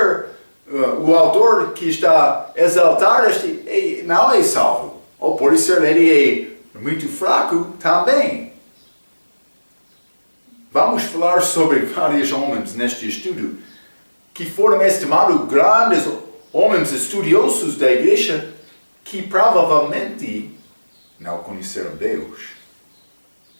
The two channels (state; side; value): inverted; both; correlation -1.00